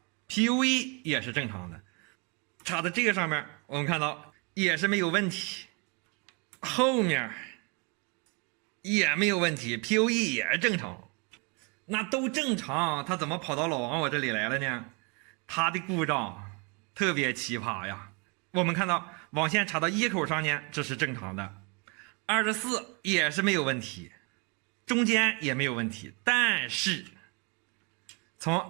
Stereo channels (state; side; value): quieter; left; 32.4 dB